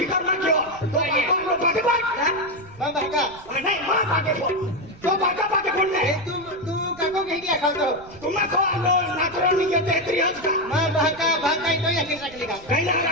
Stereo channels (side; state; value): right; noise; rumble, 22 dB below the sound